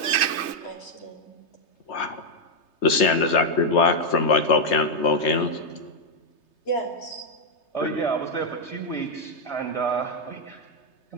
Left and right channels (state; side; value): late; right; 3.3 ms